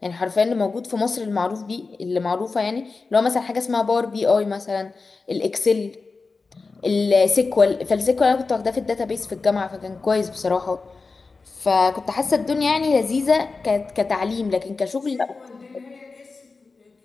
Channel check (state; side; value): quieter; right; 4.1 dB